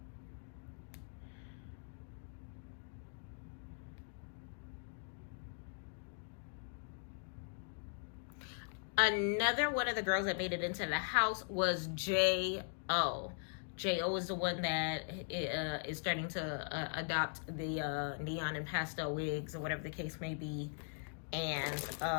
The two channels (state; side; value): silent; right; digital silence